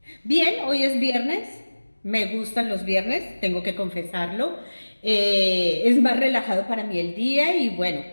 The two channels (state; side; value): inverted; both; correlation -1.00